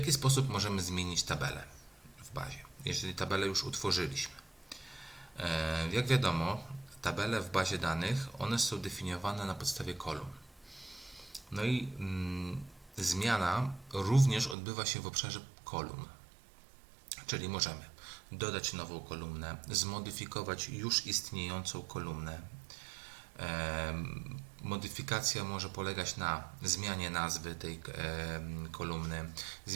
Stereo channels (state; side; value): drops out; left; at 14.6 s